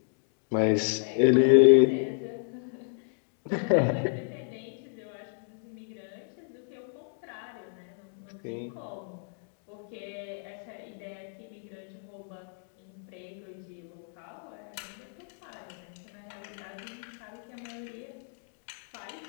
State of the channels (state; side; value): silent; right; digital silence